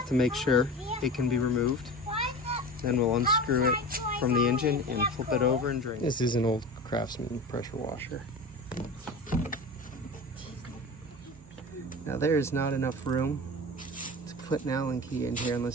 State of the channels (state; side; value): normal; both; correlation 0.32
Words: to make sure it can be removed. Then we'll unscrew it from the engine and flip it over and drain. This is an old Craftsman pressure washer. Now there is not enough room to put an Allen key in here